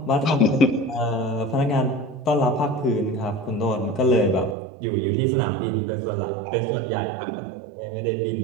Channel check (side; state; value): left; drops out; at 4.5 s